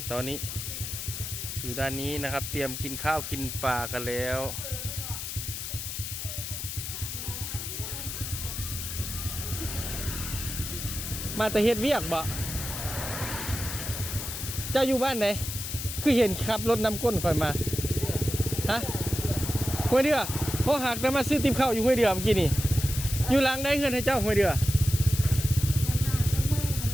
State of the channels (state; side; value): noise; left; hiss, 6 dB below the sound